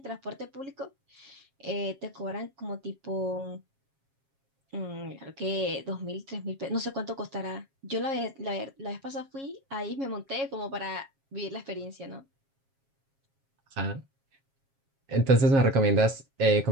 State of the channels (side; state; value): left; late; 7.4 ms